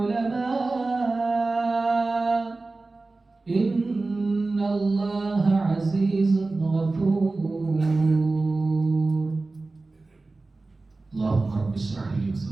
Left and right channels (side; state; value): left; quieter; 3.4 dB